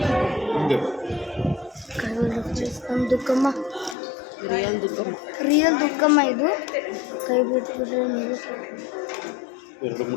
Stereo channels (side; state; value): right; drops out; at 4.0 s